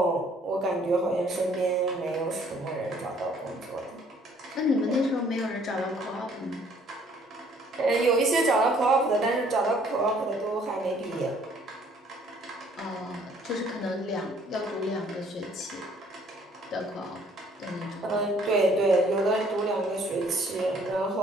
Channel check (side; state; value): both; normal; correlation 0.60